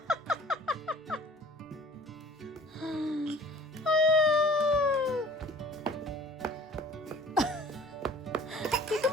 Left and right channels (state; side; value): normal; both; correlation 0.49